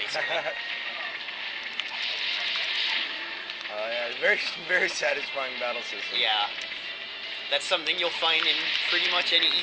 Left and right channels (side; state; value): both; identical; correlation 1.00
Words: Yeah, very, very satisfying battle system. Yeah, that's something you'll find in pretty much any